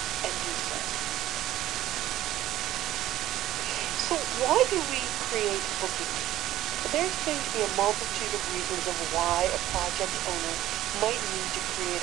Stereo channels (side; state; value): left; quieter; 14.2 dB